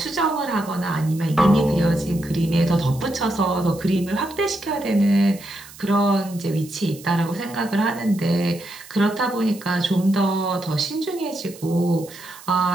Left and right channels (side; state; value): right; noise; hiss, 19 dB below the sound